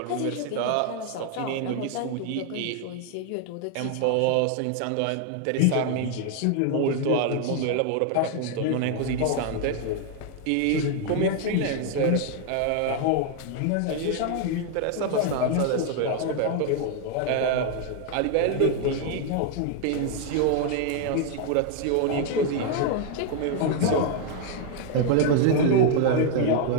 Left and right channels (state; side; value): different; both; correlation 0.00